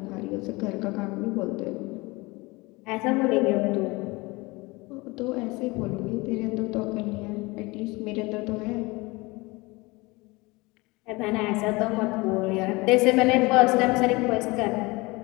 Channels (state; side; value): quieter; right; 23.8 dB